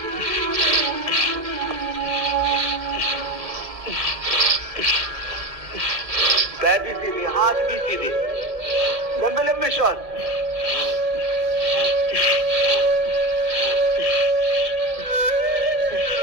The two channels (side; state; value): left; late; 2.1 ms